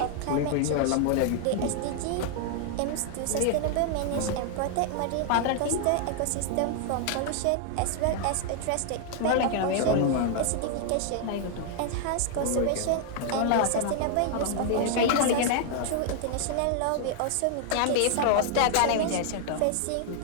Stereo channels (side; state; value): both; different; correlation 0.00